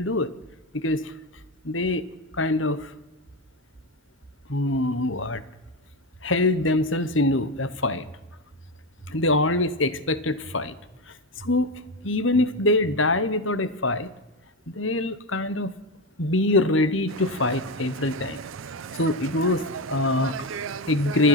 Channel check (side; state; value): both; normal; correlation 0.15